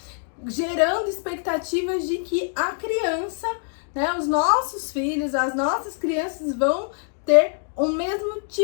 gerando expectativas de que a criança, né, os nossos filhos, as nossas crianças vão ter o mesmo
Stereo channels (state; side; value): silent; right; digital silence